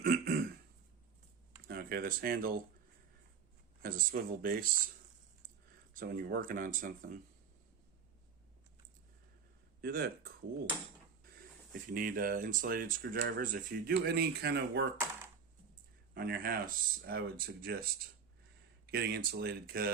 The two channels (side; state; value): left; quieter; 6.3 dB